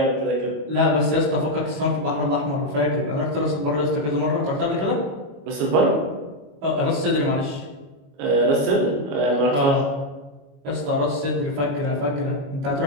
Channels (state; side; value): late; left; 22 ms